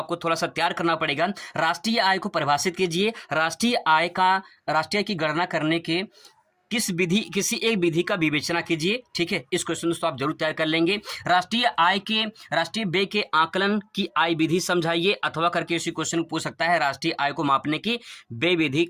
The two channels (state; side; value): identical; both; correlation 1.00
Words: थोड़ा सा तैयार करना पड़ेगा। राष्ट्रीय आय को परिभाषित कीजिए। राष्ट्रीय आय की गणना करने के किसी एक विधि का विवेचना कीजिए, ठीक है। इस क्वेश्चन दोस्तों आप जरूर तैयार कर लेंगे। राष्ट्रीय व्यय के आकलन की आय विधि समझाइए, अथवा करके इसी क्वेश्चन पूछ सकता है। राष्ट्रीय आय को मापने की व्यय विधि